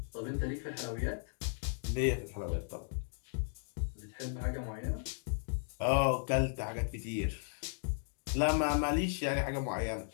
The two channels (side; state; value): right; silent; digital silence